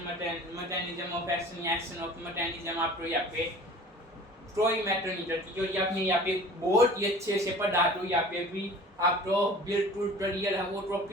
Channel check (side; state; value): both; normal; correlation 0.44